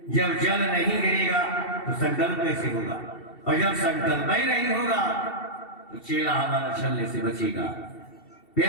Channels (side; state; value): right; late; 2.7 ms